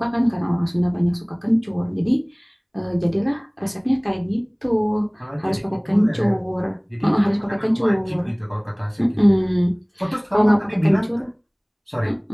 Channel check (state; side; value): identical; both; correlation 1.00